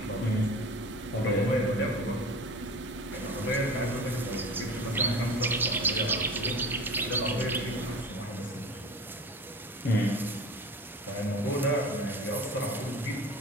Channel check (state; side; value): normal; both; correlation 0.36